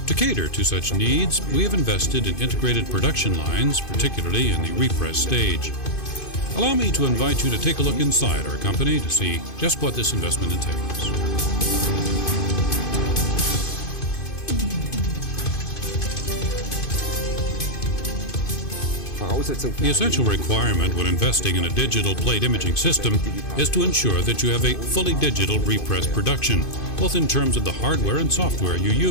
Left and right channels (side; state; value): right; late; 2.5 ms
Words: To cater to such needs, we have invested in integrated production lines, particularly in the repress stage. Allow me to invite you to take a look inside our company to see just what this investment entails. The essential requirement when investing in a digital plate imaging system is to ensure that you have a fully digital repress production, both in terms of the hardware and software you